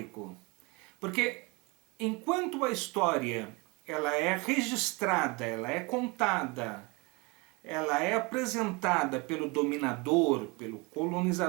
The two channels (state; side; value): quieter; left; 27.4 dB